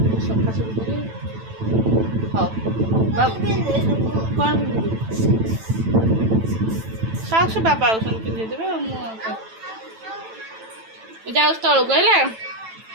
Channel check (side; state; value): left; late; 9.0 ms